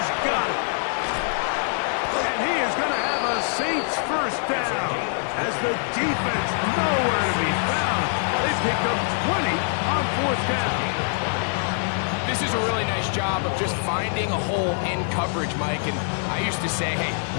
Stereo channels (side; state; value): right; silent; 62 dB below the other